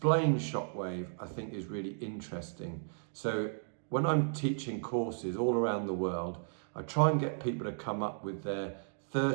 shockwave, I think, is really interesting. So when I'm teaching courses all around the world, I try and get people to come up with their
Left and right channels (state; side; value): silent; left; digital silence